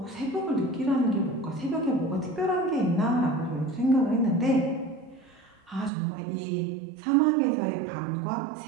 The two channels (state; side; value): drops out; left; at 5.9 s